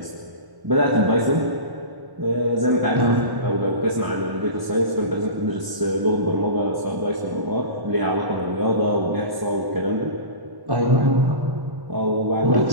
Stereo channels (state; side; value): late; left; 1.0 ms